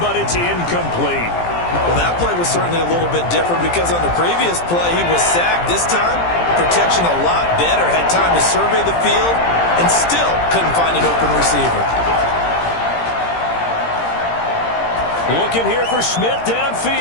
it's incomplete. Well, that play was certainly a little bit different because on the previous play, he was sacked. This time, protection a lot better. Had time to survey the field and still couldn't find an open receiver. Looking here for Smith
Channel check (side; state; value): right; late; 17 ms